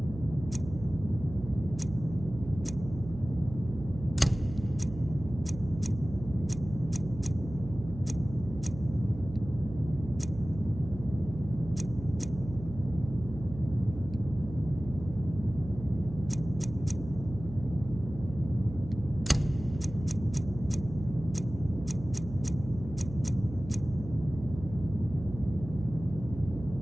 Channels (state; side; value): noise; right; hum, 11 dB below the sound